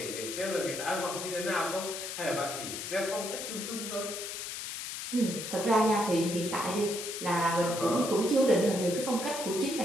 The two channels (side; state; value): left; noise; hiss, 6 dB below the sound